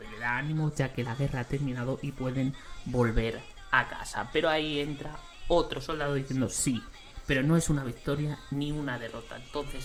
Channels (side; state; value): both; identical; correlation 1.00